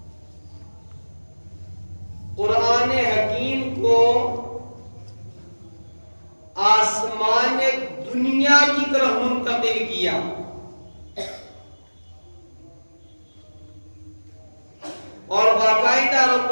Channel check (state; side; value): inverted; both; correlation -1.00